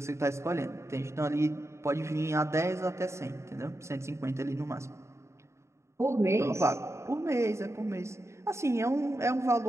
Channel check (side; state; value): left; late; 0.14 ms